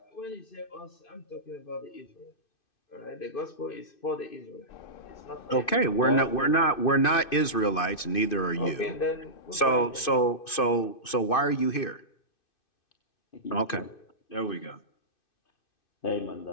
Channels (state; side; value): late; right; 2.6 ms